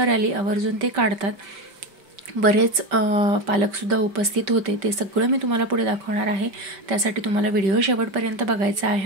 रॅली आवर्जून ते काढतात। बरेच पालकसुद्धा उपस्थित होते, ते सगळं मी तुम्हाला पुढे दाखवणार आहे। त्यासाठी तुम्हाला व्हिडिओ शेवटपर्यंत बघायचा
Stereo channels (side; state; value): left; late; 5.2 ms